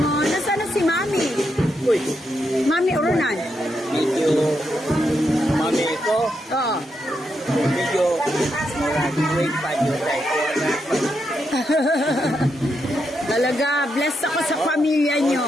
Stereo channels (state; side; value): normal; both; correlation 0.82